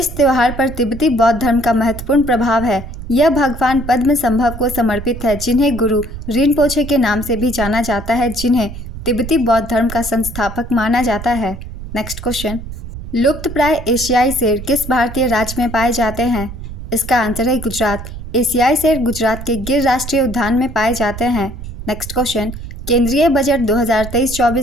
त्यौहार पर तिब्बती बौद्ध धर्म का महत्वपूर्ण प्रभाव है। यह भगवान पद्म संभव को समर्पित है, जिन्हें गुरु रिनपोछे के नाम से भी जाना जाता है, जिन्हें तिब्बती बौद्ध धर्म का संस्थापक माना जाता है। नेक्स्ट क्वेश्चन, लुप्तप्राय एशियाई शेर किस भारतीय राज्य में पाए जाते हैं? इसका आंसर है गुजरात। एशियाई शेर गुजरात के गिर राष्ट्रीय उद्यान में पाए जाते हैं। नेक्स्ट क्वेश्चन, केंद्रीय बजट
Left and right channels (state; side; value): noise; right; rumble, 10 dB below the sound